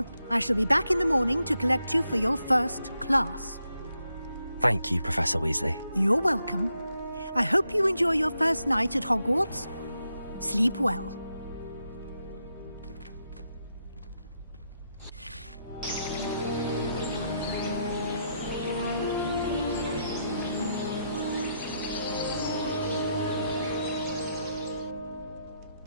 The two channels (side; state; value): both; inverted; correlation -0.81